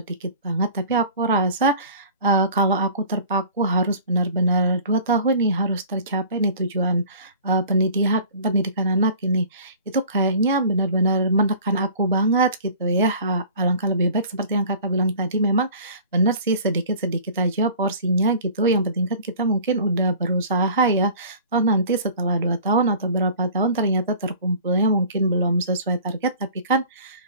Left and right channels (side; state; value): both; inverted; correlation -0.45